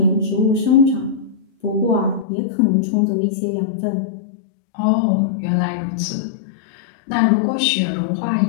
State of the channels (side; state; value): right; drops out; at 2.2 s